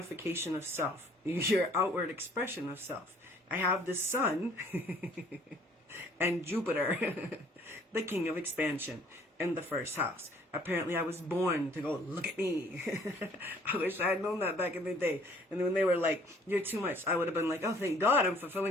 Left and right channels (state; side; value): normal; both; correlation 0.58